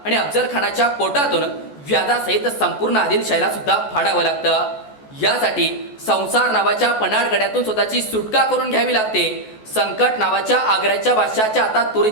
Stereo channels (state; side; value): late; right; 14 ms